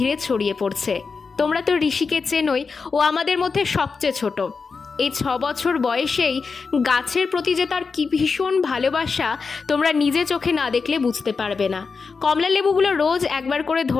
ছড়িয়ে পড়ছে। তোমরা তো ঋষিকে চেনোই, ও আমাদের মধ্যে সবচেয়ে ছোট। এই 6 বছর বয়সেই গাছের প্রতি যে তার কি ভীষণ ভালোবাসা, তোমরা নিজে চোখে না দেখলে বুঝতে পারবে না। কমলা লেবুগুলো রোজ একবার করে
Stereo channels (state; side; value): quieter; right; 4.9 dB